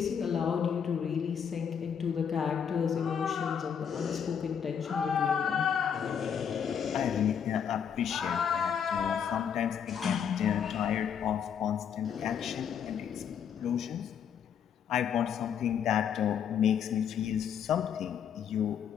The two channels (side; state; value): right; quieter; 7.9 dB